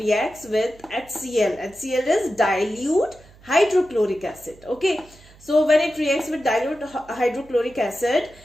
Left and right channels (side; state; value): right; noise; hum, 25 dB below the sound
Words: with HCl. HCl is dilute hydrochloric acid. Okay, so when it reacts with dilute hydrochloric acid,